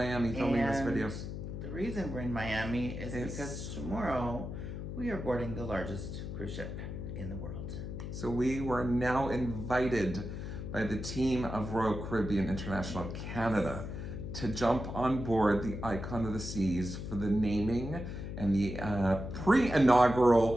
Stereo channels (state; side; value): noise; left; hum, 7 dB below the sound